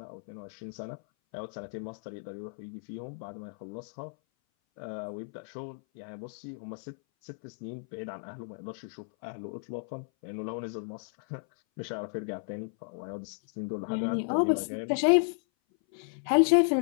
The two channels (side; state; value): right; silent; 56 dB below the other